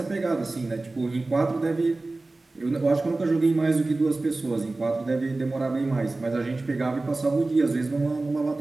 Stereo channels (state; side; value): quieter; left; 3.2 dB